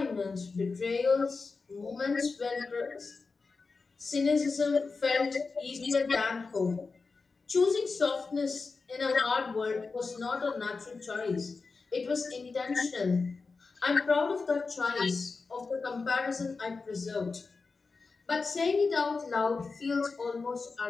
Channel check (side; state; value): right; quieter; 4.3 dB